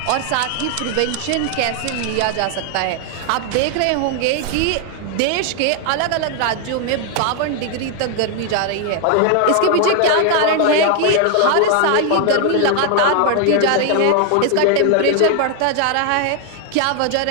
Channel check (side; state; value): both; different; correlation 0.00